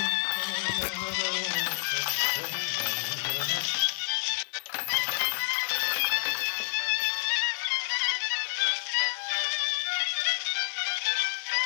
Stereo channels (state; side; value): silent; right; digital silence